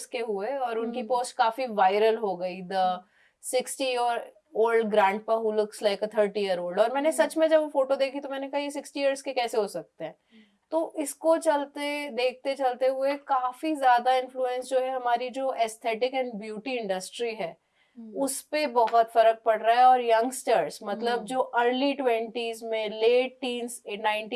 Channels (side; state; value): both; identical; correlation 1.00